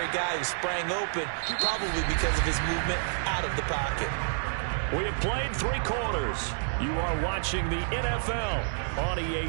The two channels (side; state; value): left; silent; digital silence